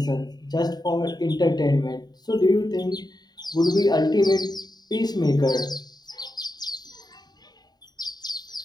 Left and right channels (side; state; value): right; late; 0.20 ms